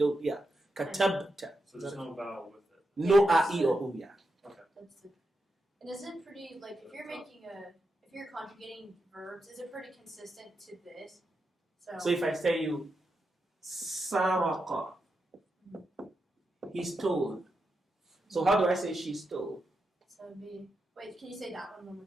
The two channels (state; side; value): normal; both; correlation 0.87